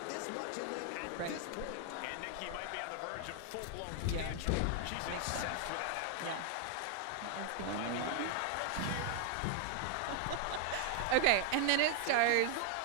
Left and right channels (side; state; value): both; different; correlation 0.00